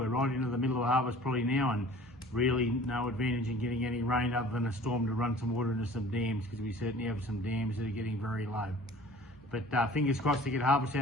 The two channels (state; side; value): normal; both; correlation 0.47